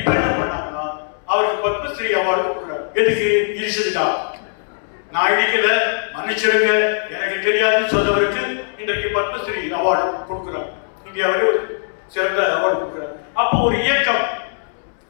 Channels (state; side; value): silent; right; 65 dB below the other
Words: என்ன பண்ணாங்கன்னா அவருக்கு பத்மஸ்ரீ அவார்டு கொடுக்குறாங்க. எதுக்கு? இடிச்சதுக்கா. நான் இடிக்கல, மன்னிச்சிருங்க, எனக்கு தெரியாதுன்னு சொன்னவருக்கு இன்றைக்கு பத்மஸ்ரீ அவார்டு கொடுக்குறார். இந்தியாவிலே ஒரு சிறந்த அவார்டு கொடுக்குறார். அப்போ ஒரு இயக்கம்,